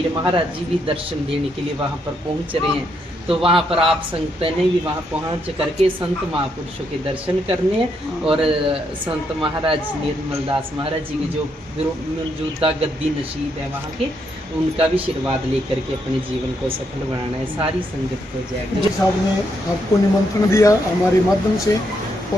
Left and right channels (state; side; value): normal; both; correlation 0.77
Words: महाराज जी भी दर्शन देने के लिए वहाँ पर पहुँच रहे हैं। तो वहाँ पर आप संगत ने भी वहाँ पहुँच करके संत महापुरुषों के दर्शन करने हैं और संत महाराज निर्मल दास महाराज जी के जो मौजूदा गद्दी नसीब है वहाँ के, उनका भी आशीर्वाद लेकर के अपने जीवन को सफल बनाना है। सारी संगत को जय जी साहब ने आपको निमंत्रण दिया हमारे माध्यम से